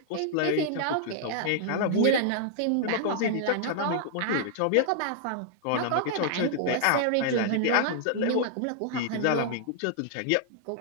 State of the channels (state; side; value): different; both; correlation -0.01